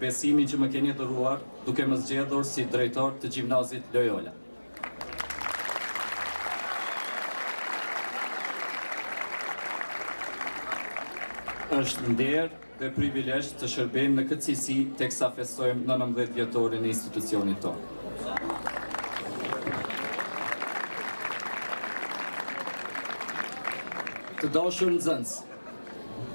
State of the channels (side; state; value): both; inverted; correlation -1.00